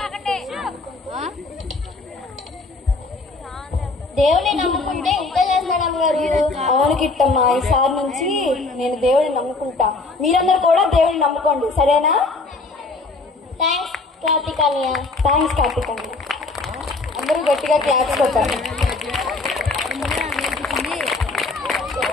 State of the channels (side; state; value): right; quieter; 3.6 dB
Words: దేవుని నమ్ముకుంటే ఇంత చేస్తాడు అమ్మగారు. అవును కిట్టమ్మా, ఈసారి నుంచి నేను దేవుడిని నమ్ముకుంటా. మీరందరూ కూడా దేవుడిని నమ్ముకోండి, సరేనా? థ్యాంక్స్ కార్తికానియా. థ్యాంక్స్ కార్తికానియా. అందరూ గట్టిగా క్లాప్స్ కొట్టారు.